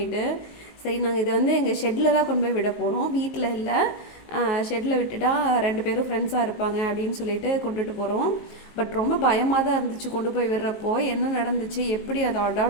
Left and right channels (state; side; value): late; right; 19 ms